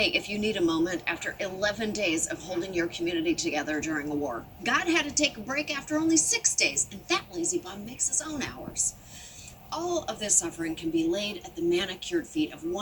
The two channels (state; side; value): identical; both; correlation 1.00